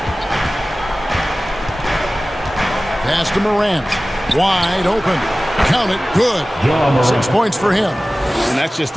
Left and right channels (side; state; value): both; normal; correlation 0.97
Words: Pass to Morant. Wide open. Count it. Good. 6 points for him. And that's just